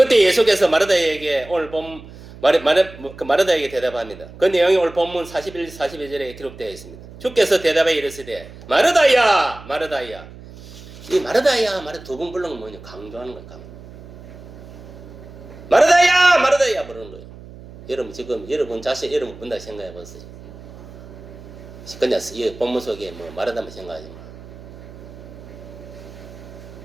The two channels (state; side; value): noise; right; hum, 17 dB below the sound